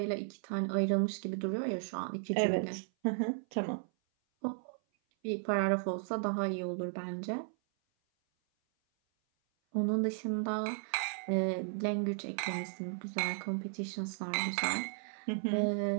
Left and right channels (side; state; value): left; silent; 54 dB below the other